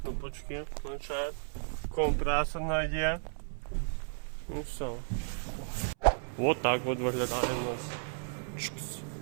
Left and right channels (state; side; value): silent; left; 55 dB below the other